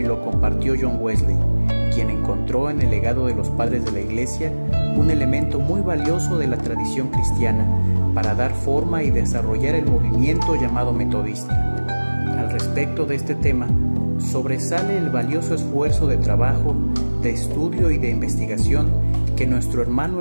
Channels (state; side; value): inverted; both; correlation -1.00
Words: lo compartió John Wesley, quien encontró en el legado de los padres de la iglesia un elemento muy valioso de la tradición cristiana para dar forma y desarrollar el movimiento llamado metodista. Al respecto de este tema, sobresale el valioso esfuerzo de trabajo, de estudio y de investigación que nuestro hermano